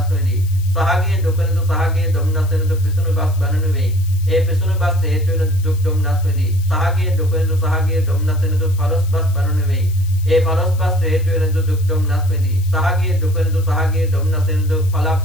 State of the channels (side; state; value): left; noise; hiss, 20 dB below the sound